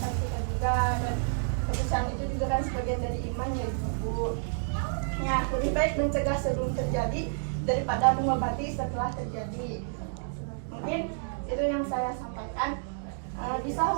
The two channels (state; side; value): silent; left; digital silence